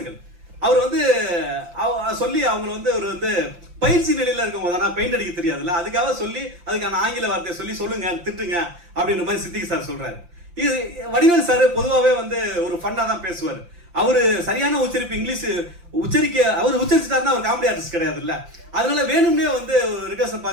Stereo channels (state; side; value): late; left; 5.8 ms